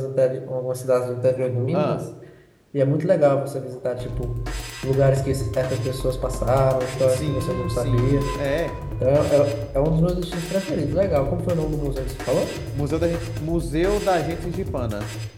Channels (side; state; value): both; identical; correlation 1.00